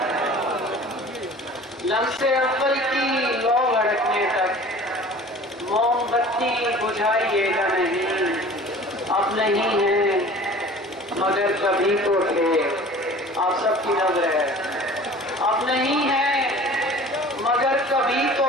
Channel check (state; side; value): normal; both; correlation 0.44